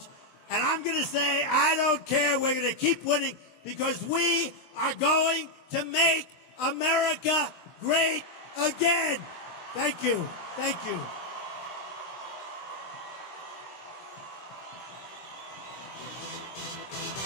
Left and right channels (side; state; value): right; late; 23 ms